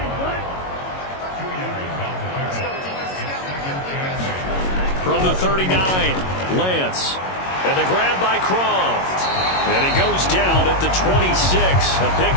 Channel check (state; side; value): late; right; 22 ms